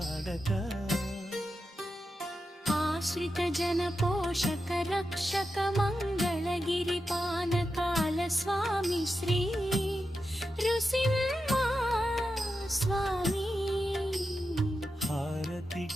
ఆశ్రిత జన పోషక రక్షక మంగళగిరి పానకాల స్వామి శ్రీ నృసింహ స్వామి, హారతి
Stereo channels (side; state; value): both; normal; correlation 0.89